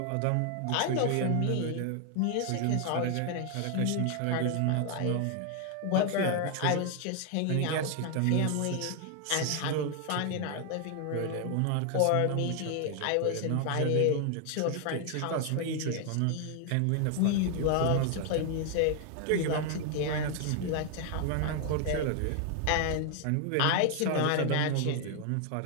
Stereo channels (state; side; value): different; both; correlation 0.00